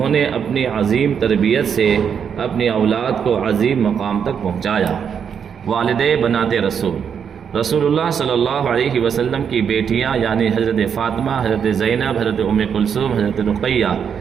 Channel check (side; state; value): left; quieter; 7.4 dB